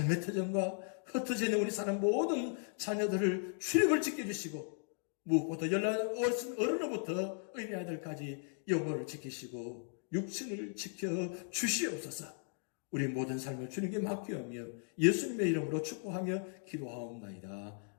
터전과 흩어져 있는 우리 사람 모든 자녀들을 출입을 지켜주시고 무엇보다 연락 어른으로부터 어린이 아들까지 영혼을 지키시고 육신을 지켜 주시옵소서. 우리 모든 삶을 주님께 맡기며 예수님의 이름으로 축복하며 기도하옵나이다.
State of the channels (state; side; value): silent; right; 53 dB below the other